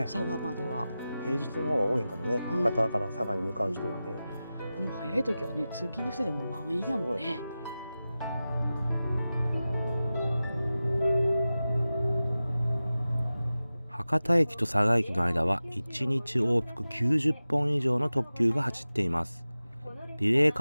佐賀までは平日の方が多いんかもね。博多から佐賀に向かう人はね。もう早い時はね、通勤の人でも満員やもんね。博多駅と佐賀駅の間は1日往復90本以上の特急が走っています。リレー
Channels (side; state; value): both; inverted; correlation -0.95